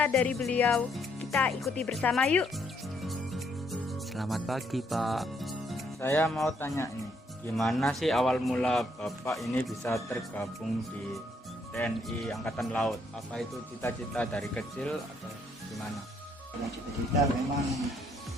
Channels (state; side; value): normal; both; correlation 0.71